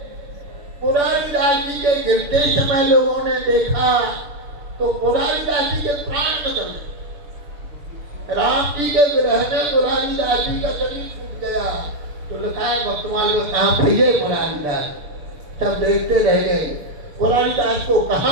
पुरारीदास जी के गिरते समय लोगों ने देखा तो पुरारीदास जी के प्राण निकल गए। राम जी के विरह में पुरारीदास जी का शरीर छूट गया। तो लिखा है भक्तमाल में, कहाँ भैया पुरारीदास, सब देखते रह गए। पुरारीदास को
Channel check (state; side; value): late; left; 7.0 ms